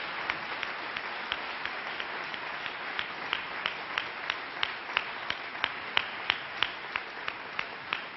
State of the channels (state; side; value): identical; both; correlation 1.00